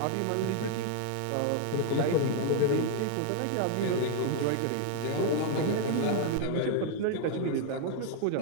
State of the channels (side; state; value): both; different; correlation 0.00